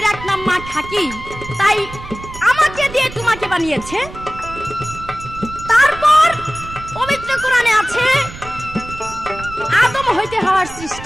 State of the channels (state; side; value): noise; right; rumble, 13 dB below the sound